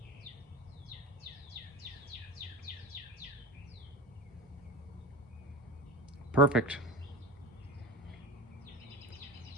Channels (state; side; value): normal; both; correlation 0.27